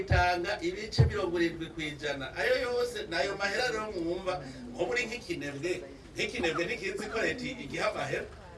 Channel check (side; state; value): both; identical; correlation 1.00